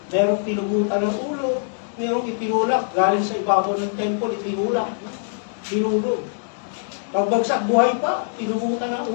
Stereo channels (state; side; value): silent; right; digital silence